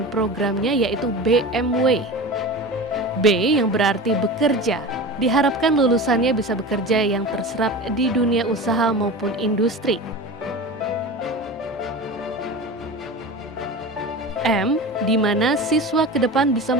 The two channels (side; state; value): both; normal; correlation 0.30